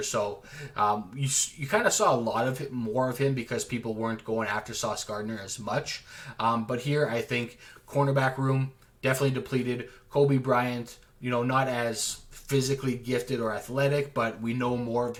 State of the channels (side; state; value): both; identical; correlation 1.00